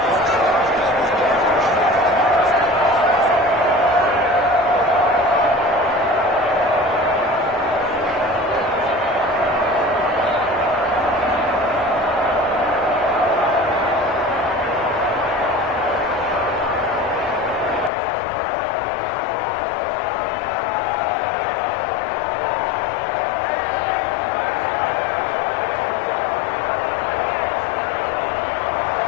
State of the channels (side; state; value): right; drops out; at 17.9 s